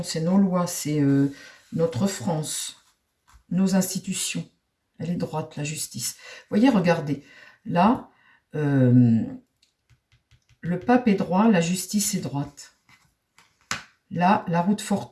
c'est nos lois, c'est notre France, nos institutions. Elle est droite, la justice. Vous voyez, regardez. Là, le pape est droit, la justice est droite. Là, la roue de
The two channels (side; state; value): both; identical; correlation 1.00